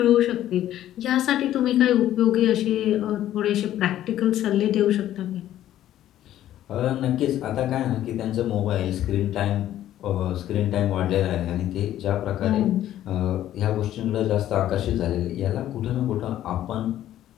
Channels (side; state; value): right; quieter; 12.5 dB